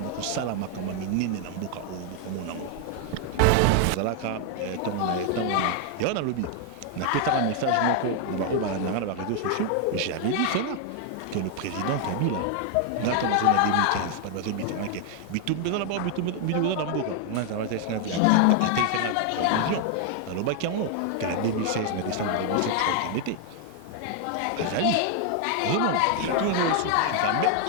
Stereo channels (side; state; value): both; different; correlation 0.00